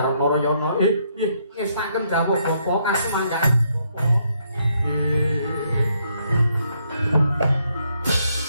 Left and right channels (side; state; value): both; inverted; correlation -0.73